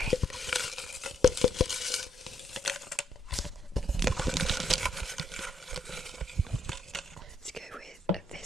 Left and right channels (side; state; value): both; normal; correlation 0.73